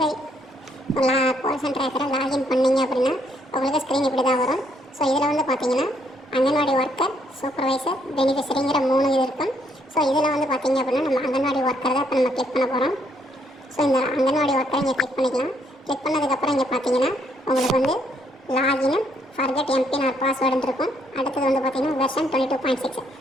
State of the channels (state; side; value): normal; both; correlation 0.71